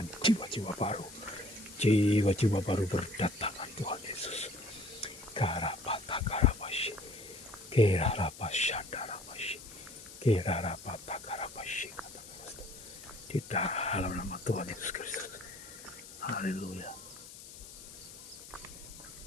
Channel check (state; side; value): noise; left; hiss, 15 dB below the sound